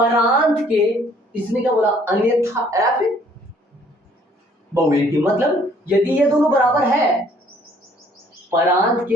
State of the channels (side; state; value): both; normal; correlation 0.60